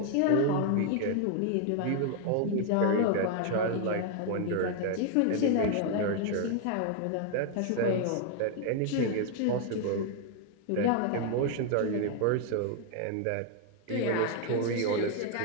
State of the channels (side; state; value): both; different; correlation 0.00